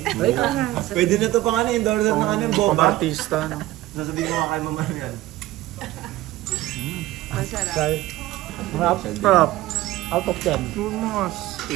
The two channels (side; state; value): left; quieter; 16.7 dB